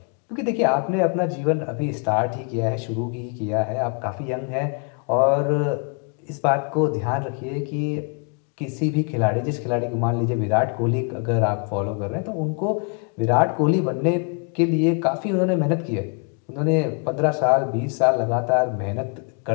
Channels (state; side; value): quieter; right; 38.3 dB